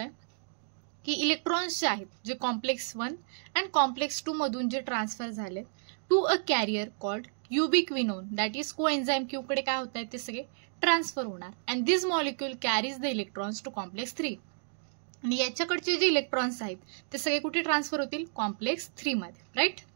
की इलेक्ट्रॉन्स जे आहेत जे कॉम्प्लेक्स 1 अँड कॉम्प्लेक्स 2 मधून जे ट्रान्सफर झाले to a carrier called ubiquinone that is coenzyme Q कडे काय होत आहे ते सगळे ट्रान्सफर होणार. And this molecule carries the electrons to complex 3. आणि याच्याकडचे जे इलेक्ट्रॉन्स आहेत ते सगळे कुठे ट्रान्सफर होतील कॉम्प्लेक्स 3 मध्ये. राईट.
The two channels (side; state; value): left; silent; digital silence